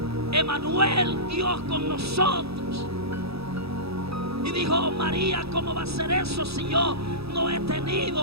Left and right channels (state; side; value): late; left; 0.77 ms